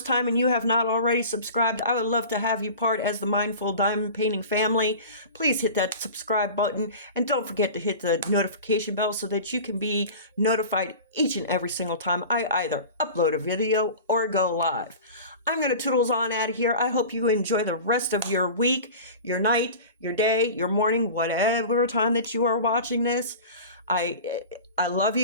time and you have not already subscribed, I would love to have you part as the Mindful Diamond Painting family. Please hit that subscribe button and don't forget to hit the notification bell so that you can be notified each and every single time I either upload a video or go live. I'm going to toodles on out of here. I hope you enjoy the rest of your week, your night, your day, your morning, whatever time that you are watching this. I love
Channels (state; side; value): inverted; both; correlation -0.36